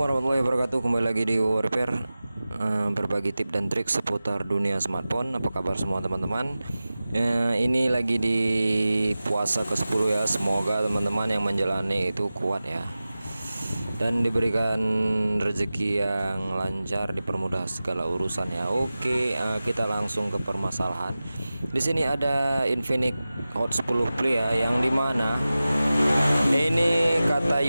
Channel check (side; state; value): both; inverted; correlation -0.96